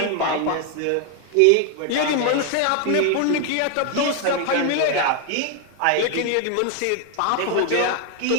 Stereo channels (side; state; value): both; different; correlation 0.01